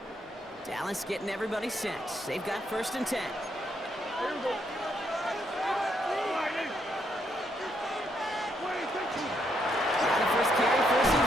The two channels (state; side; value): normal; both; correlation 0.75